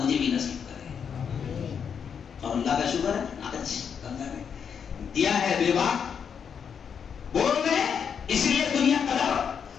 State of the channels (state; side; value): quieter; right; 7.1 dB